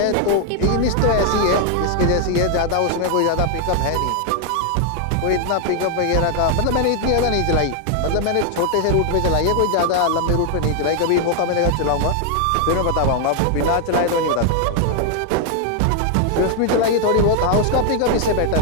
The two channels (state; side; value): different; both; correlation 0.00